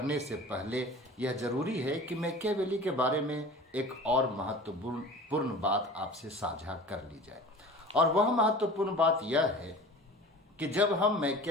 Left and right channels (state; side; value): normal; both; correlation 0.39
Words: से पहले यह जरूरी है कि मैकियावेली के बारे में एक और महत्वपूर्ण बात आपसे साझा कर ली जाए, और वह महत्वपूर्ण बात यह है कि जब हम